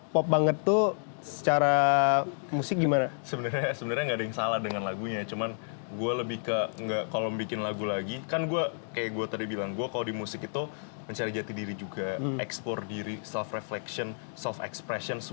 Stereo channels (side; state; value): right; silent; digital silence